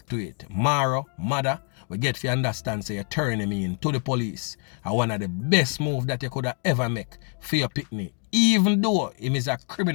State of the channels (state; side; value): quieter; right; 39.6 dB